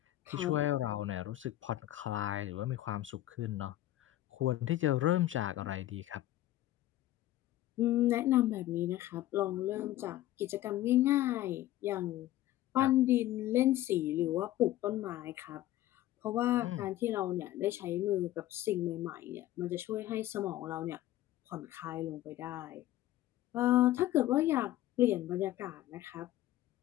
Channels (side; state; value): right; quieter; 14.5 dB